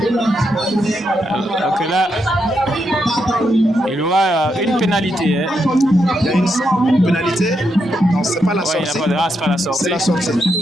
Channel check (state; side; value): normal; both; correlation 0.81